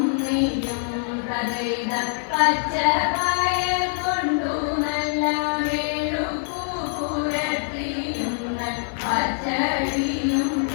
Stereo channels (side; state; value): right; silent; digital silence